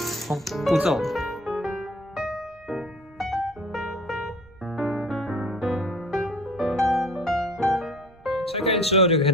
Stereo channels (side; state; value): right; noise; hum, 29 dB below the sound